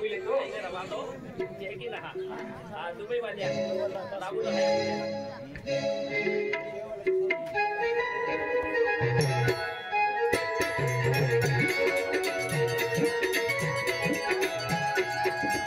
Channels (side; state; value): both; identical; correlation 1.00